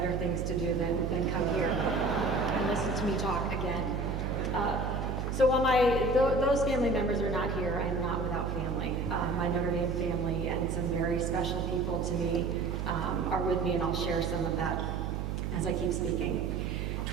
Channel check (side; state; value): right; noise; hum, 2 dB below the sound